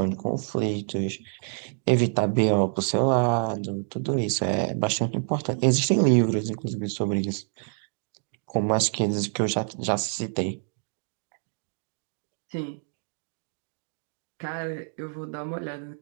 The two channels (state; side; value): silent; left; digital silence